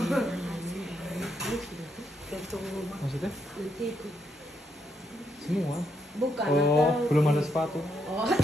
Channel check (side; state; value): both; normal; correlation 0.78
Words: Maksudnya? Semua? Bukan. Oh, belum ada sepatu. Oh.